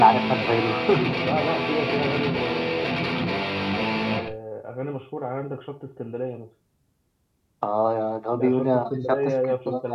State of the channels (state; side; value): identical; both; correlation 1.00